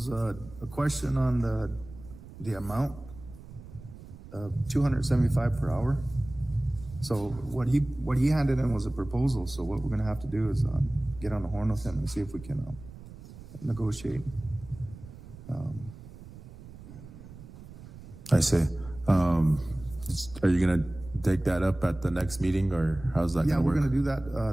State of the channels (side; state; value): right; noise; rumble, 17 dB below the sound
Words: a question on the amount of $275 per hour. So what he handed in was a proposal. So what we're gonna have to do is get on the horn with him and see if we can negotiate. I see. Are you gonna take that up at the next meeting, or how's that Yeah, gonna we're work? gonna do